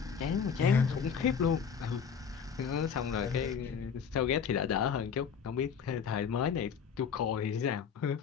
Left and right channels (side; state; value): right; quieter; 6.8 dB